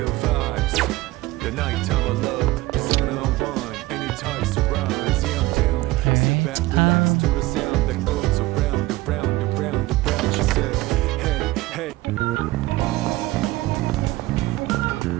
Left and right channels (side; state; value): left; quieter; 19.2 dB